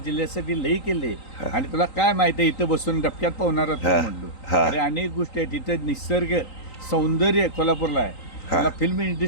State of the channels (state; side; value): late; right; 3.9 ms